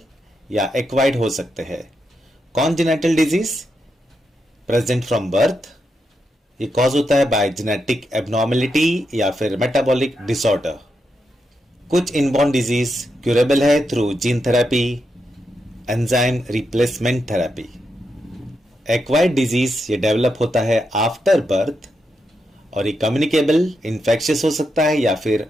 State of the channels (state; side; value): normal; both; correlation 0.84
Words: या acquired हो सकते हैं। Congenital disease present from birth, ये कॉज होता है बाय जेनेटिक एबनॉर्मेलिटी या फिर मेटाबॉलिक डिसऑर्डर। कुछ इनबॉर्न डिजीज क्यूरेबल है through gene therapy, enzyme replacement therapy. Acquired disease ये डेवलप होता है आफ्टर बर्थ और ये कम्युनिकेबल इन्फेक्शियस हो सकता है या फिर